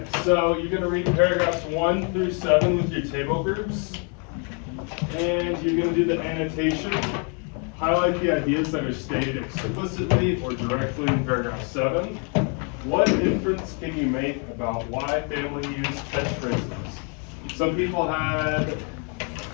so you're going to read paragraphs 1 through 7 with your table groups. And you're going to do the annotation. Highlight the ideas that are stated explicitly or directly in paragraph 7. What inference can you make about why family use catchphrases? Some people had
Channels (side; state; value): right; quieter; 38.2 dB